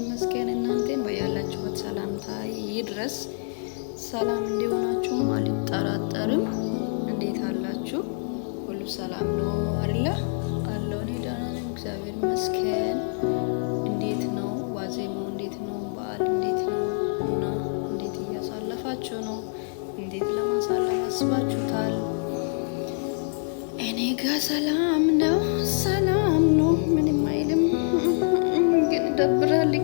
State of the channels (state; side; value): silent; right; 61 dB below the other